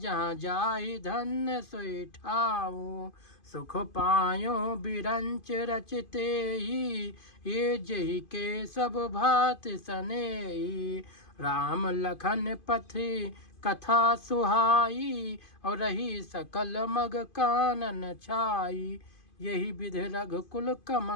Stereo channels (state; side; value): late; right; 2.5 ms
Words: जाई धन्य सोई ठाऊं। सुख पायो बिरंच रचते ही, ये जही के सब भात सनेही। राम लखन पथि कथा सुहाई और रही सकल मग कानन छाई। यही विधि रघुकुल